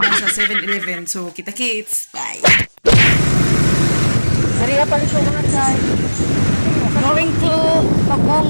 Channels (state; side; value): inverted; both; correlation -1.00